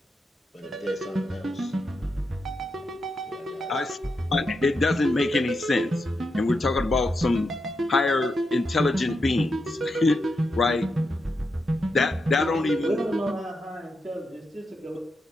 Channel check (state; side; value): normal; both; correlation 0.85